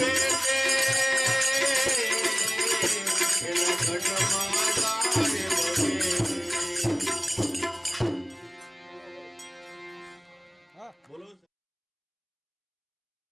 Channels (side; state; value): both; identical; correlation 1.00